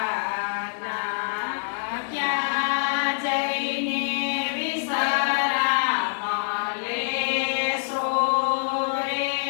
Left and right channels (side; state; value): right; silent; digital silence